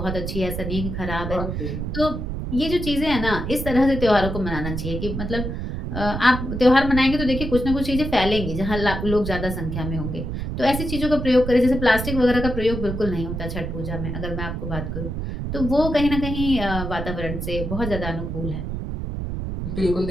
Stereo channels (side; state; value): right; noise; rumble, 4 dB below the sound